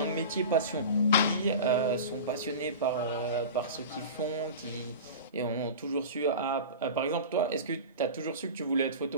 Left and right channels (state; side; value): inverted; both; correlation -0.31